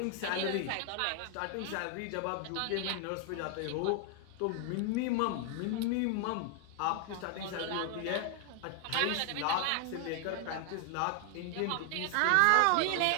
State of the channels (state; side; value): different; both; correlation 0.00